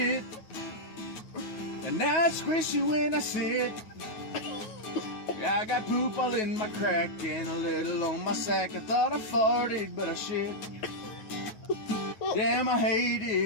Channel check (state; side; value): late; right; 9.3 ms